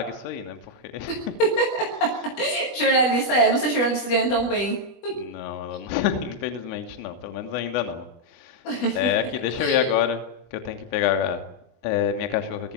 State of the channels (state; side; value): late; right; 20 ms